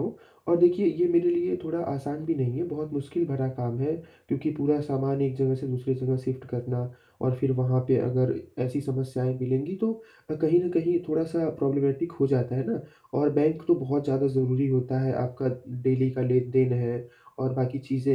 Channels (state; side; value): identical; both; correlation 1.00